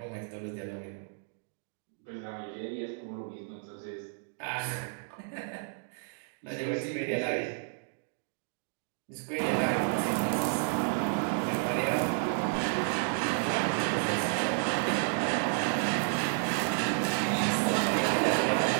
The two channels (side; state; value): left; silent; 57 dB below the other